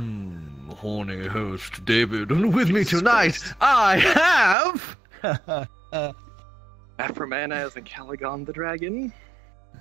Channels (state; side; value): drops out; left; at 4.5 s